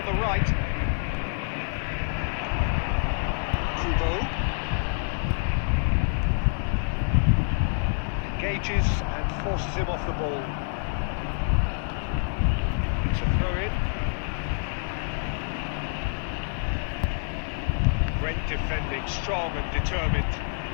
the right. Kubo engages and forces him off the ball. It's a throw-in. Great defending, strong and determined.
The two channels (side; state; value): right; silent; 57 dB below the other